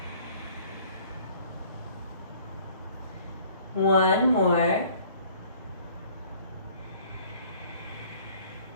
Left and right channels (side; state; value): both; inverted; correlation -0.55